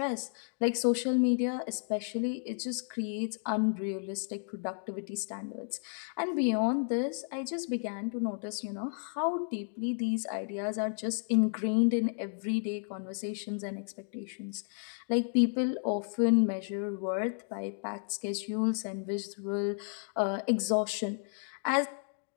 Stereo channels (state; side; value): silent; right; 56 dB below the other